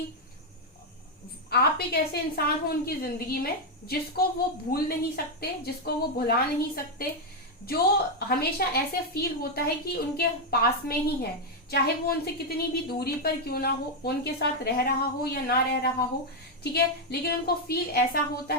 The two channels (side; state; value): both; normal; correlation 0.02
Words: आप एक ऐसे इंसान हो उनकी जिंदगी में जिसको वो भूल नहीं सकते, जिसको वो भुला नहीं सकते, जो हमेशा ऐसे फील होता है कि उनके पास में ही है, चाहे वो उनसे कितनी भी दूरी पर क्यों ना हो, उनके साथ रह रहा हो या ना रह रहा हो। ठीक है, लेकिन उनको फील ऐसा होता